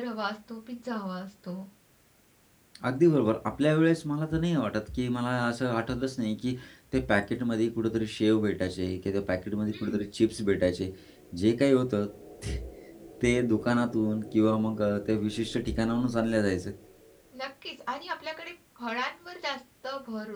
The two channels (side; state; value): both; identical; correlation 1.00